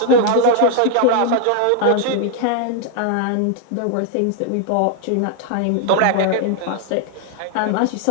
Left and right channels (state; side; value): different; both; correlation 0.00